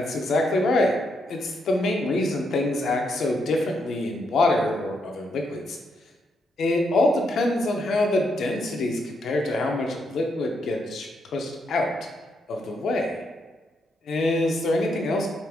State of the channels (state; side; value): normal; both; correlation 0.79